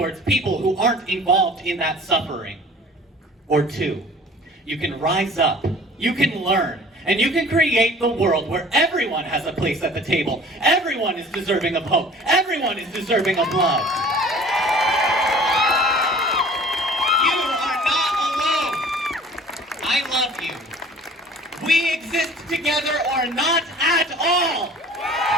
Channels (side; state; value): both; normal; correlation 0.47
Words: people who aren't involved in that suffering. Or two, you can rise up, you can learn, and you can create the world where everyone has a place at the table. Everyone is deserving of hope. Everyone is deserving of love. You are not alone. I love you. We exist together or not at all.